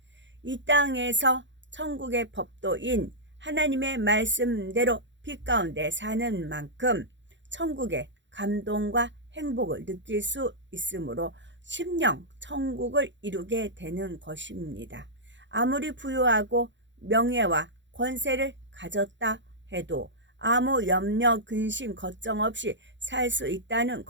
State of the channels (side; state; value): left; late; 0.53 ms